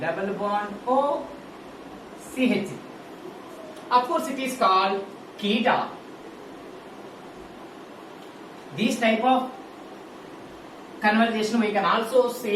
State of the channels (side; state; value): both; identical; correlation 1.00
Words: bond O, CH. Of course, it is called keta. This type of conversation we can also